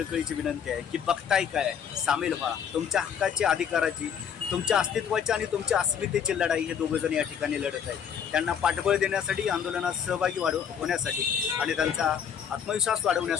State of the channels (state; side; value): quieter; right; 7.9 dB